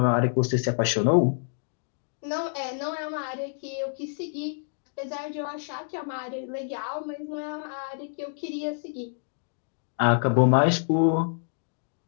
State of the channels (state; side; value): silent; right; digital silence